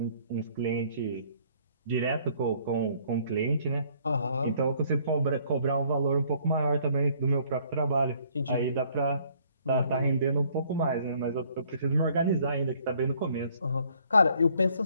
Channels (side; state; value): both; inverted; correlation -0.62